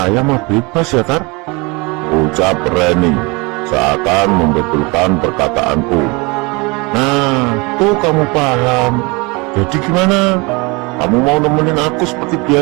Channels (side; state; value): left; quieter; 27.0 dB